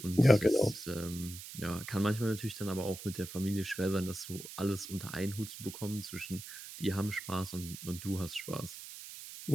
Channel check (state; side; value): noise; right; hiss, 12 dB below the sound